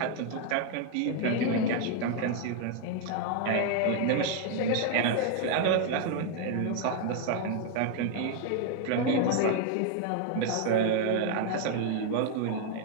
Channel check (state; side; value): different; both; correlation 0.00